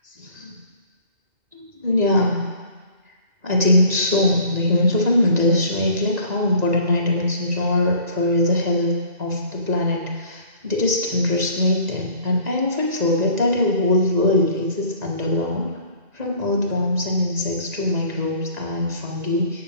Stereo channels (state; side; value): late; left; 1.9 ms